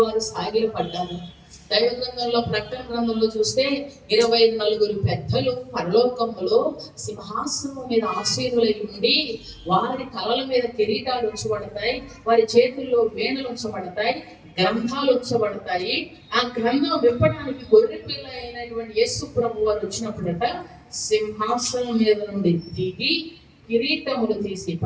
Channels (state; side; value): identical; both; correlation 1.00